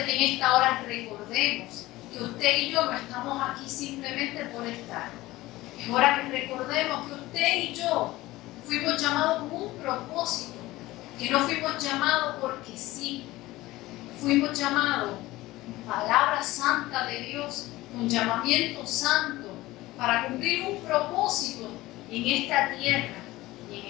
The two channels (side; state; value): right; quieter; 18.2 dB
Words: que en esta hora recordemos que usted y yo no estamos aquí simplemente por estar. Es hora que recordemos que usted y yo fuimos llamados con un propósito, que no fuimos llamados porque sí, fuimos llamados con palabra santa de Dios, con llamamiento santo, para cumplir un propósito en esta tierra y en